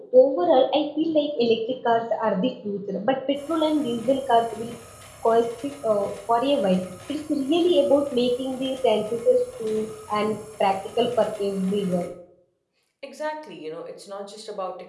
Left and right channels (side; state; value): both; identical; correlation 1.00